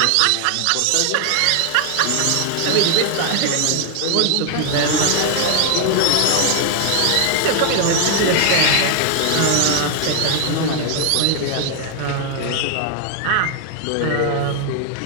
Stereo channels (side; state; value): both; different; correlation 0.00